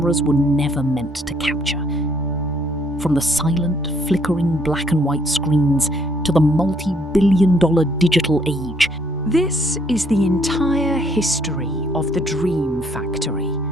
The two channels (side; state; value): both; normal; correlation 0.67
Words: were never meant to capture. From the silent, flickering black and white screens to the multi-billion-dollar digital age, this is the entire history of the Dream Factory.